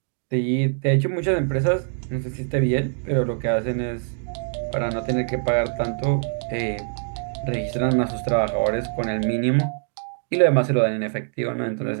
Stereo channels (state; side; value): silent; left; 63 dB below the other